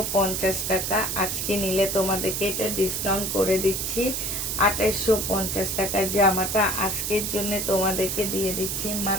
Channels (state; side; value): noise; right; hiss, 2 dB below the sound